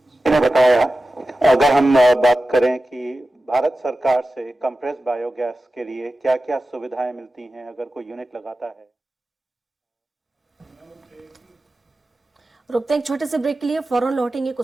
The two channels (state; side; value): normal; both; correlation 0.94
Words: ने बताया, अगर हम बात करें कि भारत सरकार से कंप्रेस बायोगैस के लिए क्या क्या सुविधाएं मिलती हैं अगर कोई यूनिट लगाता है। रुकते हैं एक छोटे से ब्रेक के लिए, फौरन लौटेंगे